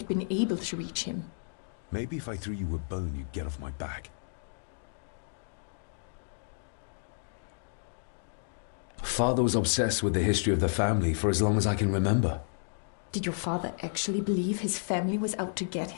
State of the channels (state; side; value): silent; right; digital silence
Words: been able to reach him. Maybe if I threw you a bone, you'd get off my back. Father was obsessed with the history of the family for as long as I can remember. Did your father actually believe his family was out to get